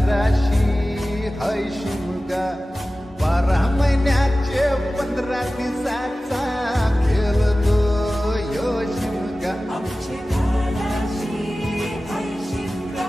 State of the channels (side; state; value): both; normal; correlation 0.96